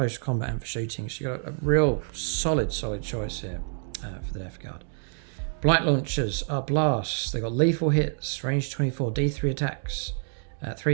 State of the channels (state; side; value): silent; left; digital silence